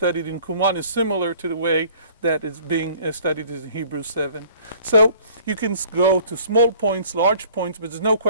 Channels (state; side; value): inverted; both; correlation -0.53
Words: in Qumran is similar to the way that it's being studied in Hebrews 7. So you can go to small points, large points, but there's no